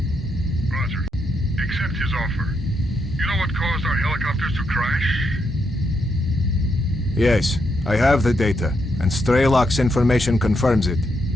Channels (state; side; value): normal; both; correlation 0.80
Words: Roger. Accept his offer. You know what caused our helicopters to crash? Yes, I have the data, and Strelok's information confirms it.